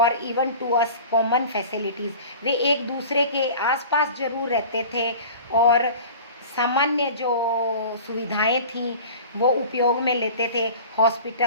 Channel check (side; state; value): both; inverted; correlation -0.39